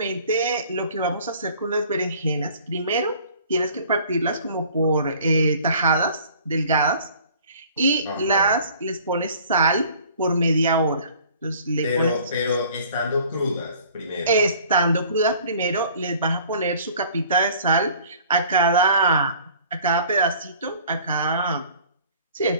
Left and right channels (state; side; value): inverted; both; correlation -0.51